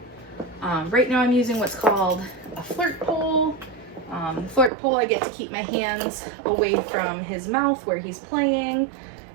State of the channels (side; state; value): left; drops out; at 4.7 s